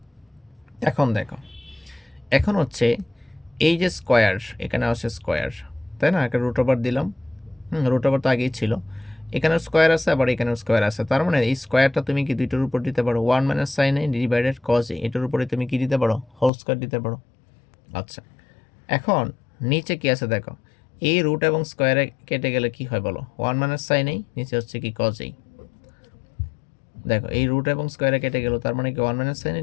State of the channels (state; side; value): drops out; right; at 16.5 s